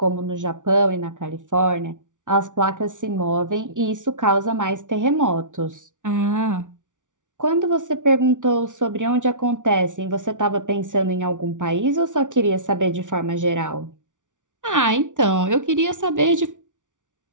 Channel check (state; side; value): late; left; 0.87 ms